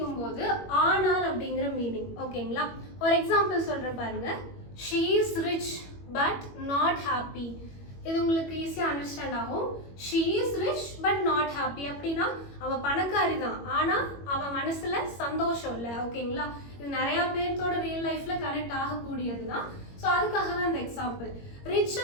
ஆனால் அப்படிங்கிற மீனிங். ஓகேங்களா. ஒரு எக்ஸாம்பிள் சொல்றேன் பாருங்க. She is rich but not happy. இது உங்களுக்கு ஈஸியா அண்டர்ஸ்டாண்ட் ஆகும். She is rich but not happy அப்படின்னா அவ பணக்காரி தான், ஆனா அவ மனசுல சந்தோஷம் இல்லை. ஓகேங்களா. இது நிறைய பேர்த்தோட ரியல் லைஃப்ல கனெக்ட் ஆகக்கூடியது தான். ஸோ அதுக்காக தான் இந்த எக்ஸாம்பிள்.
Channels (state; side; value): late; right; 21 ms